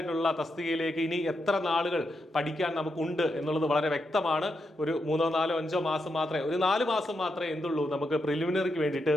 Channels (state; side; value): normal; both; correlation 0.84